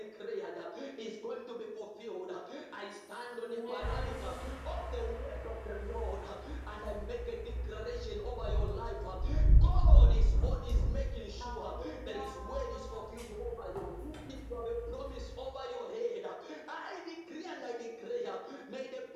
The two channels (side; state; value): both; identical; correlation 1.00